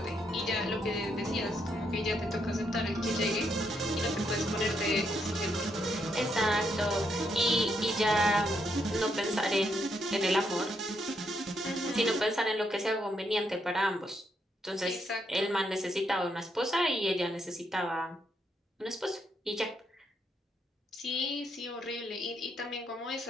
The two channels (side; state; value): both; normal; correlation 0.77